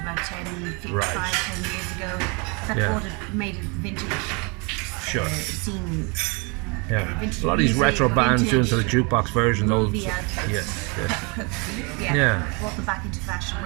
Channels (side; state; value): left; quieter; 31.3 dB